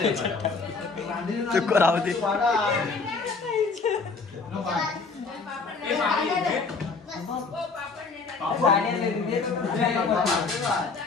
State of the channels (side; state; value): right; quieter; 4.4 dB